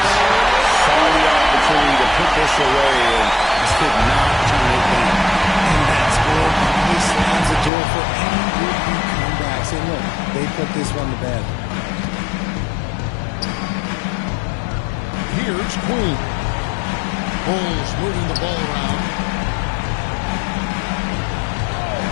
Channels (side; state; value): right; drops out; at 7.7 s